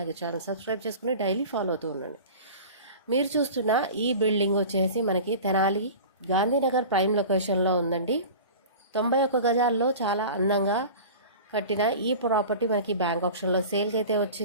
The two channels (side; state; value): both; inverted; correlation -0.36